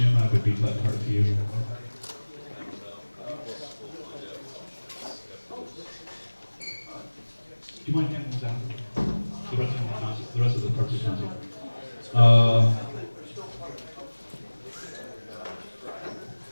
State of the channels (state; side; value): inverted; both; correlation -1.00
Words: I would beat that part for you. Do you mind handing those out? The rest of the concert, the rest of the parts of the concert.